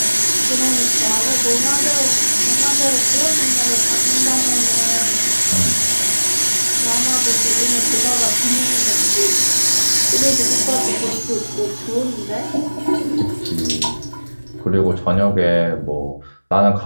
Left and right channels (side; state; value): both; inverted; correlation -1.00